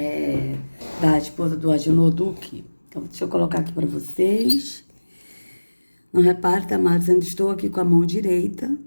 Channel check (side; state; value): both; inverted; correlation -1.00